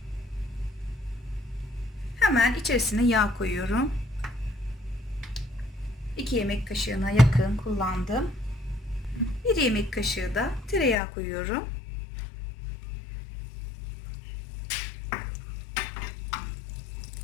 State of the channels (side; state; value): right; drops out; at 11.0 s